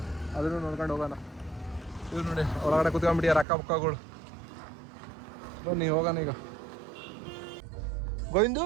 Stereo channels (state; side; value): drops out; left; at 3.5 s